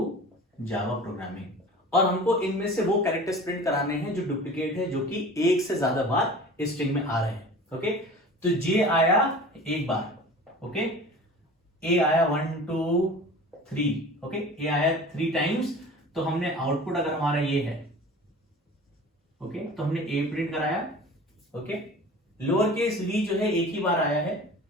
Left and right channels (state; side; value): normal; both; correlation 0.40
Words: Java programming, और हमको इनमें से वो कैरेक्टर्स प्रिंट कराने हैं जो डुप्लीकेट है, जो कि एक से ज्यादा बार इस स्ट्रिंग में आ रहे हैं। ओके, तो जे आया एक बार, ओके, ए आया 1 2 3, ओके, ए आया 3 टाइम्स। तो हमने आउटपुट अगर हमारा ये है, ओके, तो हमने ए प्रिंट कराया, ओके। लोअर केस वी जो है एक ही बार आया है,